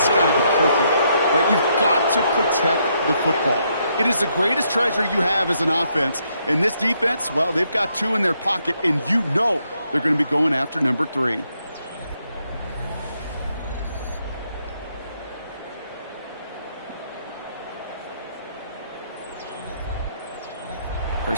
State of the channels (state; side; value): inverted; both; correlation -0.75